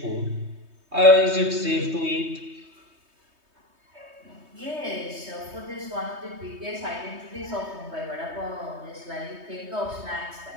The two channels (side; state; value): left; late; 3.2 ms